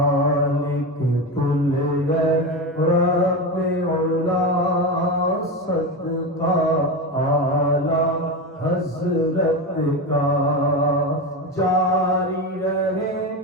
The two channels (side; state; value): both; normal; correlation 0.19